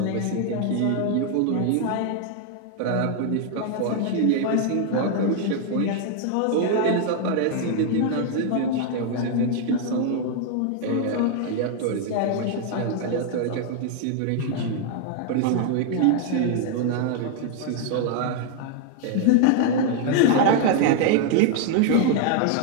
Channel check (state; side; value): different; both; correlation 0.00